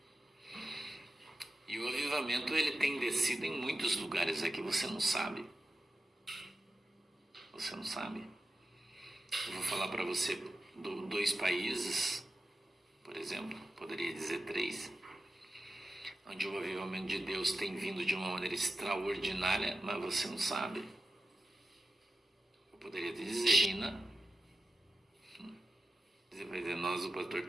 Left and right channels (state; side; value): normal; both; correlation 0.91